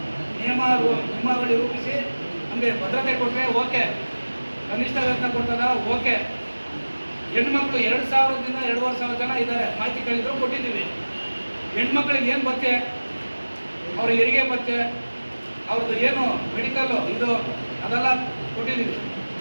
ನಿಯಮಾವಳಿ ರೂಪಿಸಿ ನಮಗೆ ಭದ್ರತೆ ಕೊಟ್ಟರೆ ಓಕೆ, ಕನಿಷ್ಠ ವೇತನ ಕೊಡ್ತದ ಓಕೆ. ಹೆಣ್ಮಕ್ಳು 2,000ದಿಂದ 2,500 ಜನ ಇದ್ದಾರೆ, ಮಾಹಿತಿ ಕೇಳಿದ್ರು ಕೊಟ್ಟಿದ್ದೀವಿ. ಹೆಣ್ಮಕ್ಳಿಗೆ ಏನು ಭತ್ಯೆ, ಅವ್ರ ಹೆರಿಗೆ ಭತ್ಯೆ, ಅವ್ರದ್ದು ಏನು ಮೆಡಿಕಲ್ಲು ಇದು ಅದೆಲ್ಲ ಕೊಟ್ಟಿದ್ದೀವಿ.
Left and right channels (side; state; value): both; inverted; correlation -1.00